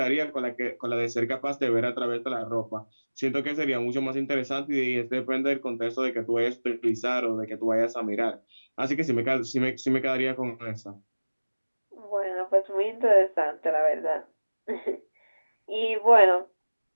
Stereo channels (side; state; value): both; inverted; correlation -1.00